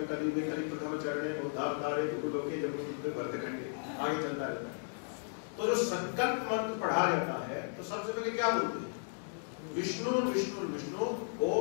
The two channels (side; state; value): right; silent; digital silence